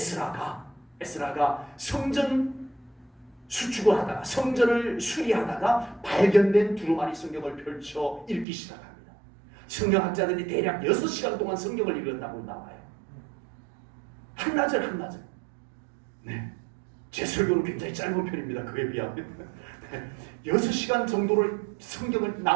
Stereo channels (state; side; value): drops out; left; at 8.5 s